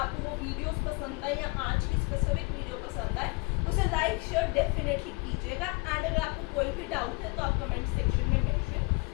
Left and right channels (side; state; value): right; quieter; 28.1 dB